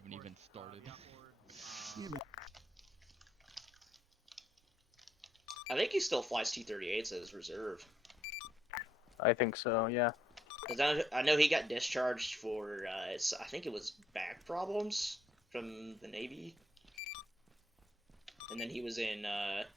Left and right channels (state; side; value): normal; both; correlation 0.73